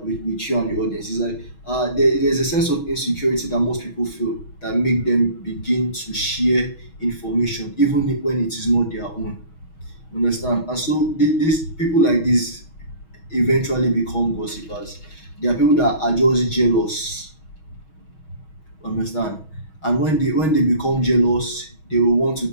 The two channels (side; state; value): right; late; 6.3 ms